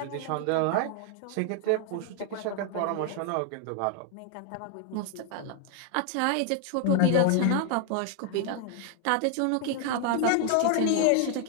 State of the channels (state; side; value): different; both; correlation 0.00